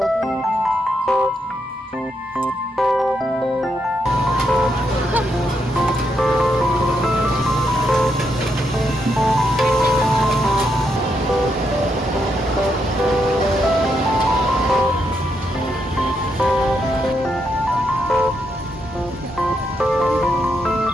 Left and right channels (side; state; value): both; normal; correlation 0.80